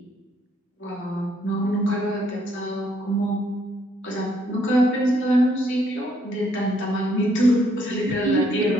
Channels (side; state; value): both; normal; correlation 0.69